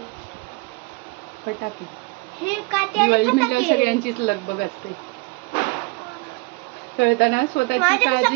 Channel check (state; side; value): quieter; left; 27.3 dB